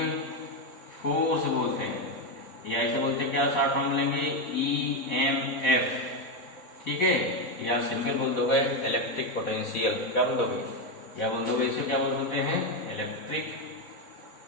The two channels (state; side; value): late; right; 4.2 ms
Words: फोर्स बोलते हैं, या इसे बोलते हैं क्या, शॉर्ट फॉर्म बोलेंगे EMF, ठीक है, या सिंपल बोल दोगे इलेक्ट्रिक पोटेंशियल, क्या बोल दोगे, क्या बोल दोगे, इसे क्या बोलते हैं, इलेक्ट्रिक